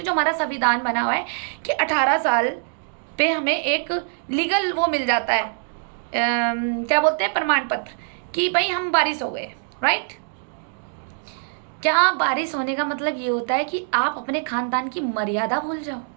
जो हमारा संविधान बना हुआ है कि 18 साल पे हमें एक लीगल वो मिल जाता है, क्या बोलते हैं, प्रमाण पत्र, कि भाई हम बारिश हो गए, राइट। क्या बारिश होने का मतलब ये होता है कि आप अपने खानदान की मर्यादा भूल जाओ?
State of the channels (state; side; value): silent; left; digital silence